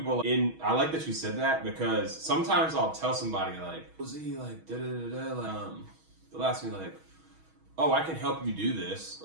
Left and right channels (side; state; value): left; late; 6.3 ms